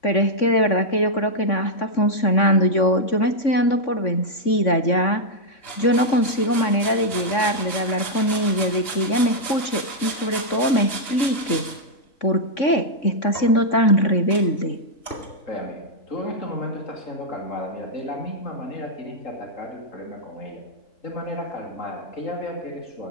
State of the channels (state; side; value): late; right; 3.6 ms